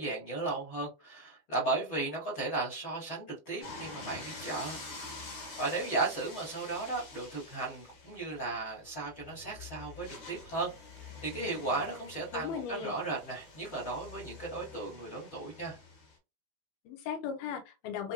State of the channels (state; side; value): late; right; 12 ms